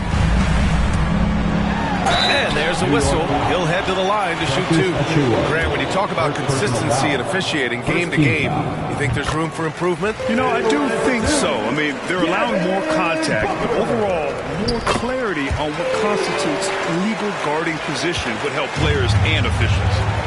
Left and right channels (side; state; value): both; identical; correlation 1.00